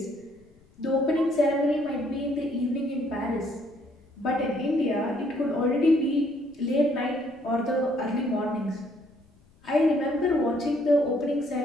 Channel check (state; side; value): noise; left; rumble, 30 dB below the sound